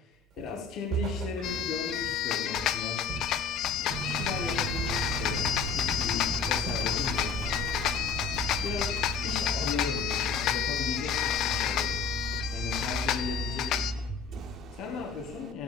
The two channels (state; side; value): quieter; right; 5.2 dB